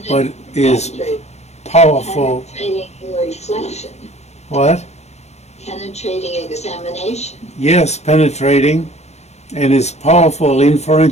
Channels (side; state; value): right; late; 0.32 ms